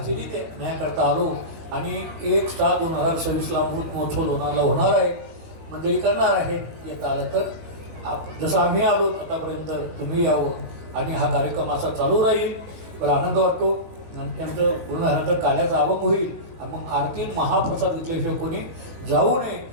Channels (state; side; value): late; left; 18 ms